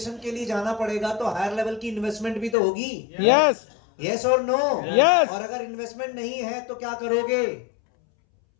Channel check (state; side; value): drops out; right; at 2.6 s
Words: के लिए जाना पड़ेगा तो हायर लेवल की इन्वेस्टमेंट भी तो होगी। यस। यस और नो? यस। और अगर इन्वेस्टमेंट नहीं है तो क्या करोगे?